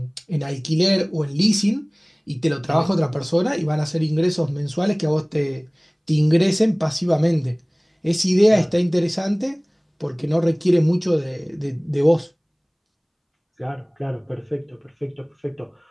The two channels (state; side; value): identical; both; correlation 1.00